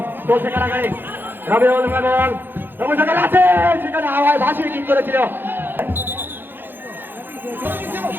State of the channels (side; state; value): left; late; 0.099 ms